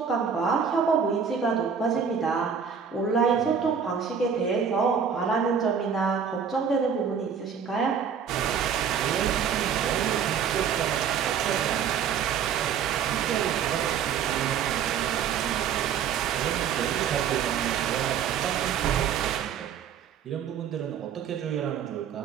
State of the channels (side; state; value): left; quieter; 7.3 dB